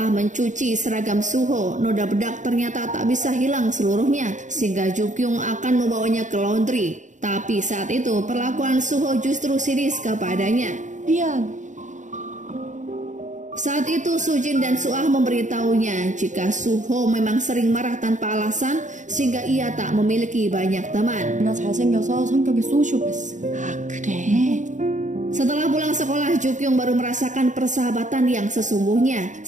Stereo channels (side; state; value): left; late; 0.36 ms